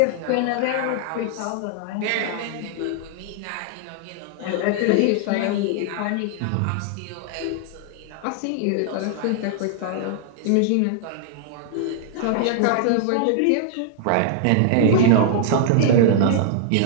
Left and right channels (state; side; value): different; both; correlation 0.00